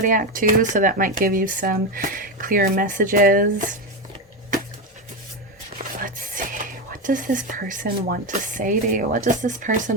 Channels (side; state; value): both; normal; correlation 0.13